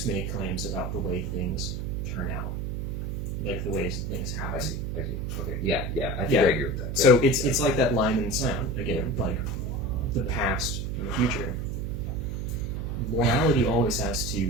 make claims about the way things turn out, like the ways things happen. I see. Okay. Yeah. I think I agree with that. So it's like that line in sound again, like the past and the future. Morality always has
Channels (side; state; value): right; noise; hum, 3 dB below the sound